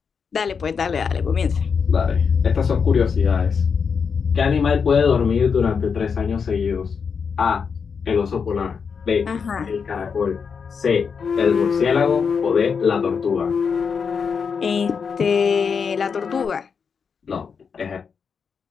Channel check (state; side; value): quieter; right; 6.1 dB